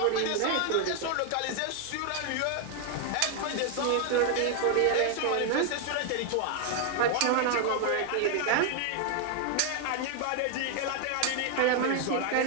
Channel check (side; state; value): both; different; correlation 0.00